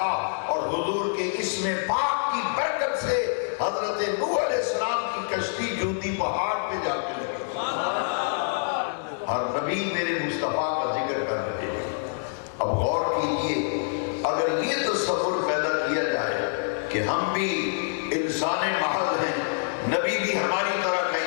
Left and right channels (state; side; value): silent; right; digital silence